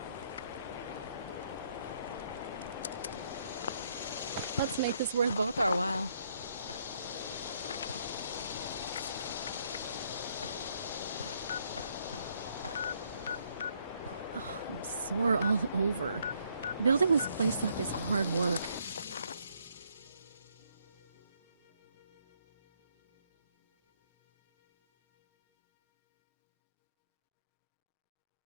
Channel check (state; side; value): inverted; both; correlation -0.71